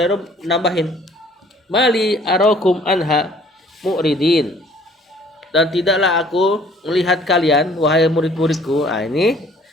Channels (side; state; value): both; normal; correlation 0.56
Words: nambahin, mali arakum anha mu'ridin. Dan tidaklah aku melihat kalian wahai murid-muridku. Ini